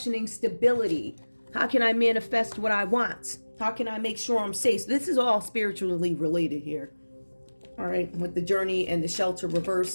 stability. How can I manifest what I want? How can I make sure I'm safe? So this is all spiritually related here. All right, with the journey and the shelter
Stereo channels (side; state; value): both; inverted; correlation -1.00